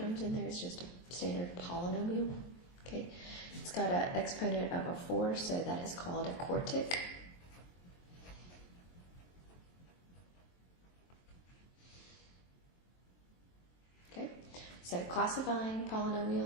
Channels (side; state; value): right; late; 23 ms